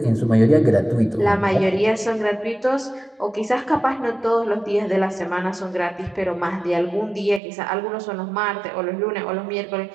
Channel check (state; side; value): drops out; left; at 7.4 s